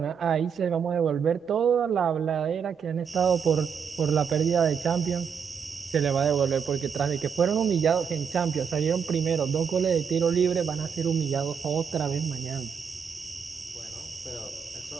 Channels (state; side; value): quieter; left; 6.9 dB